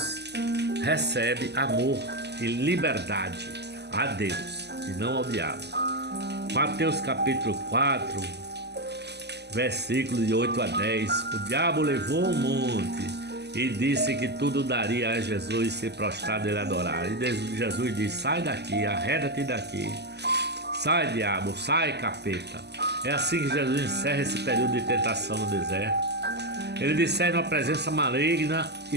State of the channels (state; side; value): late; left; 0.49 ms